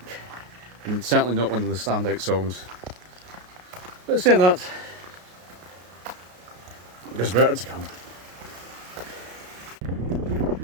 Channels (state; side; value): late; left; 33 ms